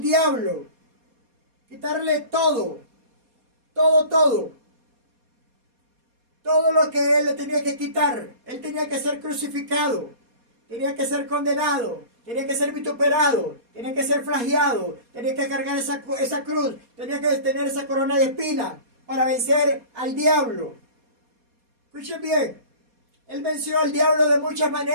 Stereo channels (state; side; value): late; left; 4.2 ms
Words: quitarle todo lo que Él le tenía que quitar. Él tenía que ser crucificado, tenía que ser condenado, tenía que ser vituperado, tenía que ser flagelado, tenía que cargar esa cruz, tenía que tener esa corona de espinas para vencer al diablo. Escuchen bien, Él venció al diablo de muchas